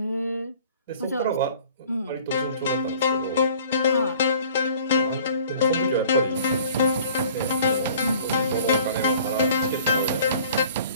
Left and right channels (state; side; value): inverted; both; correlation -0.51